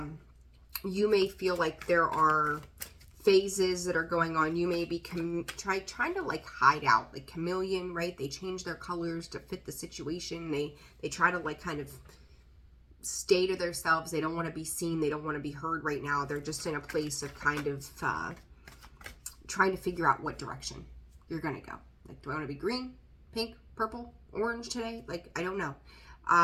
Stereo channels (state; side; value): identical; both; correlation 1.00